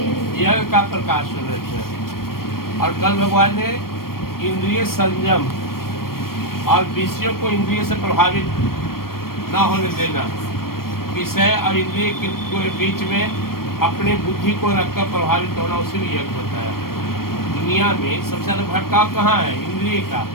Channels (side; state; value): right; late; 0.93 ms